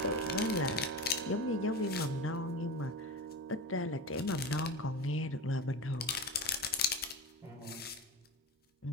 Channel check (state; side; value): normal; both; correlation 0.27